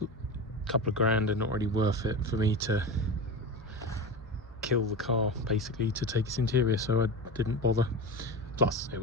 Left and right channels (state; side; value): normal; both; correlation 0.25